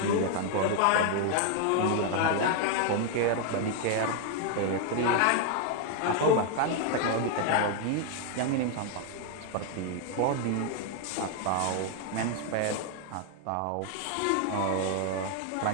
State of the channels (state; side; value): different; both; correlation 0.00